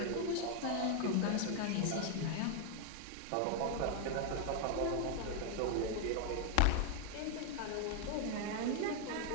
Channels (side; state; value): both; different; correlation 0.01